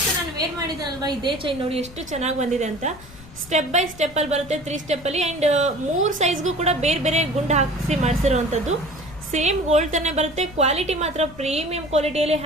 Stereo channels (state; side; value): noise; left; rumble, 19 dB below the sound